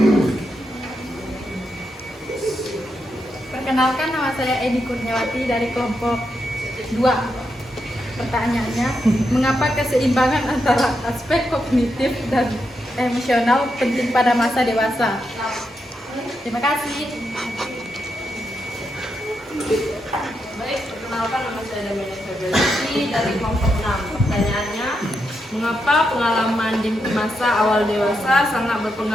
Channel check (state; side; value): normal; both; correlation 0.83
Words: Perkenalkan, nama saya Edi Kurniawati dari kelompok 2. Pertanyaannya, mengapa keseimbangan antara aspek kognitif dan emosional penting pada masa dewasa? Terima kasih. Baik, perkenalkan nama saya Damiana Febrilisi dari kelompok 6. Pertanyaannya, mengapa pengalaman di masa awal dewasa sangat